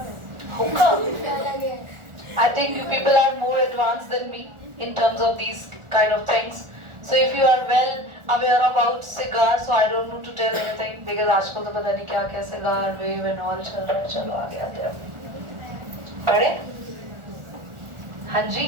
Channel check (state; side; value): late; left; 1.4 ms